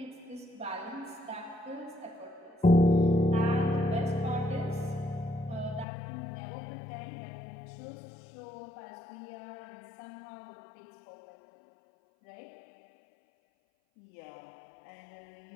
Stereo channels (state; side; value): drops out; right; at 5.9 s